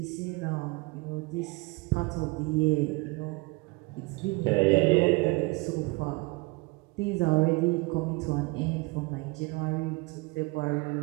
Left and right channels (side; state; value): left; quieter; 26.3 dB